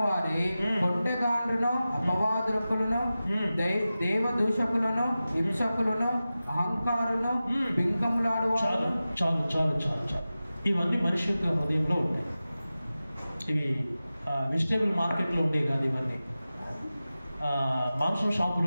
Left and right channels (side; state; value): both; inverted; correlation -0.95